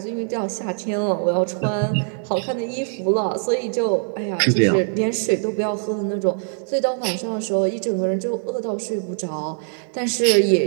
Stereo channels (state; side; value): silent; left; 55 dB below the other